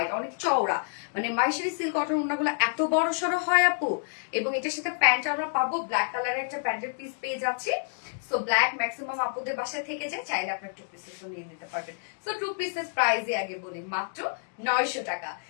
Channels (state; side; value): silent; right; digital silence